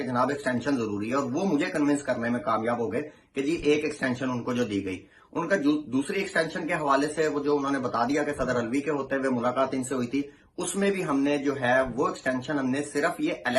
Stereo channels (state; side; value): identical; both; correlation 1.00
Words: जनाब एक्सटेंशन जरूरी है, और वो मुझे कन्विंस करने में कामयाब हो गए कि जी एक एक्सटेंशन उनको जो दी गई। उनका दूसरी एक्सटेंशन के हवाले से वो जो उन्होंने बता दिया कि सदर अलवी के होते हुए मुलाकात इनसे हुई थी, उसमें भी हमने जो है वो एक्सटेंशन हमने सिर्फ ये